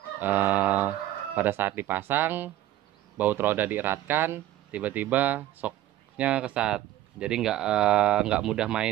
Pada saat dipasang, baut roda dieratkan, tiba-tiba shocknya kesat. Jadi nggak mudah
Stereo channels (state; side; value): quieter; left; 14.1 dB